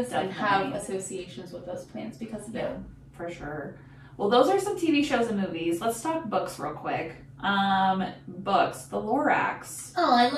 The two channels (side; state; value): both; identical; correlation 1.00